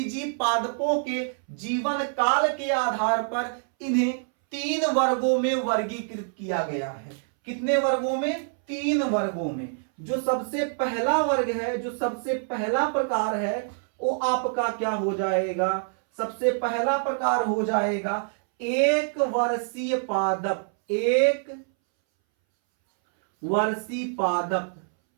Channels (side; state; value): left; silent; 61 dB below the other